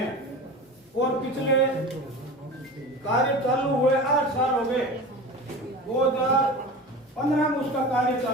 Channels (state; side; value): normal; both; correlation 0.32